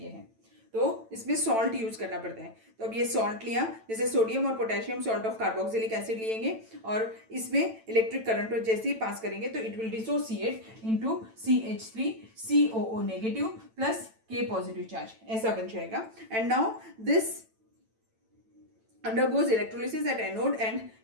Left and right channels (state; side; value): late; left; 9.0 ms